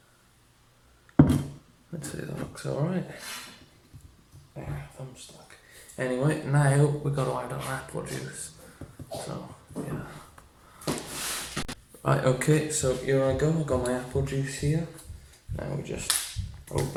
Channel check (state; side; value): identical; both; correlation 1.00